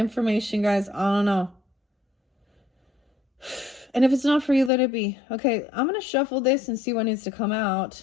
guys. I don't know. And if it's not for you, let it be. Okay, I'm going to shuffle this and see what needs to come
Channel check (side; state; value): right; drops out; at 4.7 s